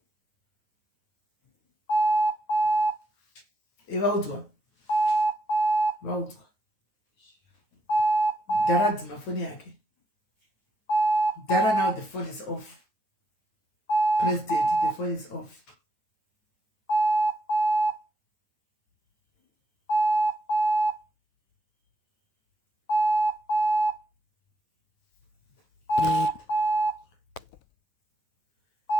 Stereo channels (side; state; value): right; late; 9.4 ms